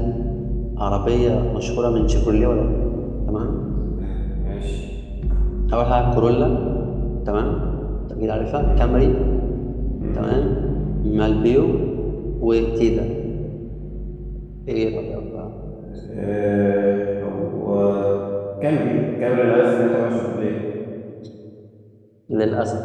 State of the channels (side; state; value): both; identical; correlation 1.00